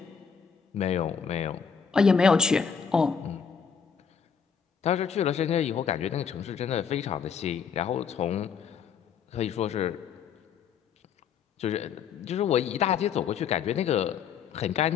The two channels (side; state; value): right; quieter; 6.8 dB